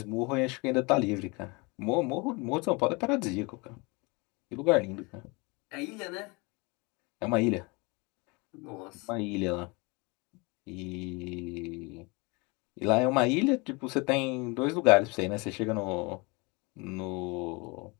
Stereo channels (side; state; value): right; quieter; 27.7 dB